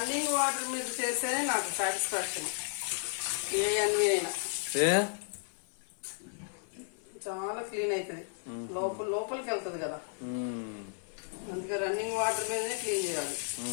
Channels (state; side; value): silent; right; 56 dB below the other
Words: వాటర్ మీద చేస్తేనే నాకు సాటిస్ఫాక్షన్. ఏ అన్వి అయినా చాలా క్లీన్ అవుతుంది, లోపలికి వెళ్తుంది కదా, అందుకే రన్నింగ్ వాటర్ మీదనే క్లీన్ చేయాలి.